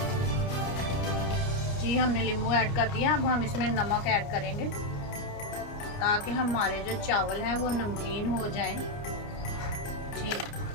जी, हमने नींबू ऐड कर दिया। अब हम इसमें नमक ऐड करेंगे ताकि हमारे जो चावल हैं वो नमकीन हो जाएं। जी,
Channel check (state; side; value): late; right; 29 ms